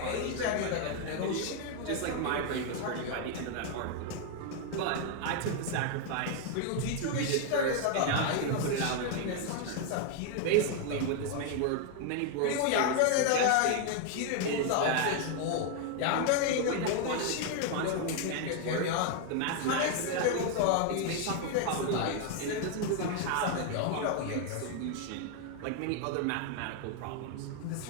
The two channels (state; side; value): different; both; correlation 0.00